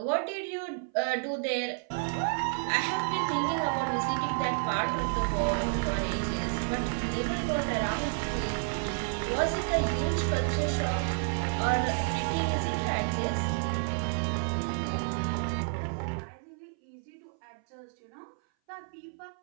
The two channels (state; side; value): silent; left; 57 dB below the other